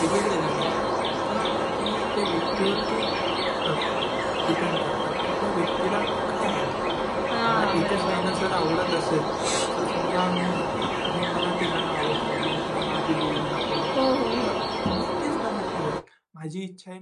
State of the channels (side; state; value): both; identical; correlation 1.00